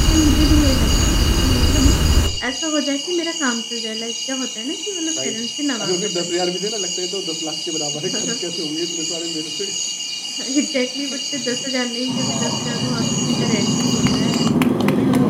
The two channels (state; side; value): identical; both; correlation 1.00